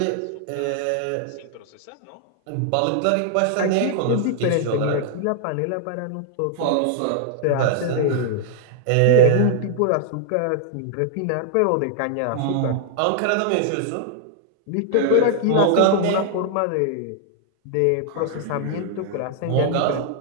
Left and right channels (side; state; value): both; different; correlation -0.01